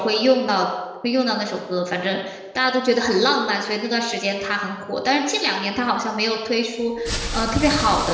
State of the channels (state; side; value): identical; both; correlation 1.00